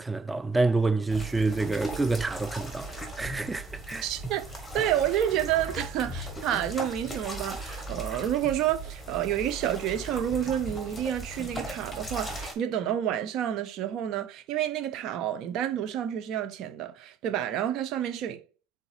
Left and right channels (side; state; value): left; quieter; 6.7 dB